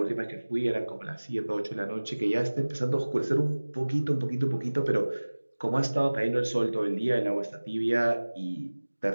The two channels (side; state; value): both; inverted; correlation -1.00